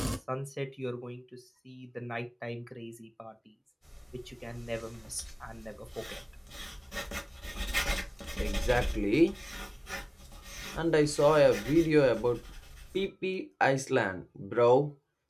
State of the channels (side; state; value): both; identical; correlation 1.00